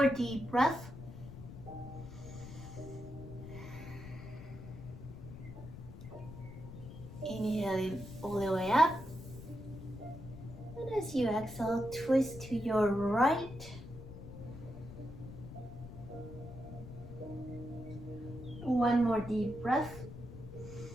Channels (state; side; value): noise; left; rumble, 12 dB below the sound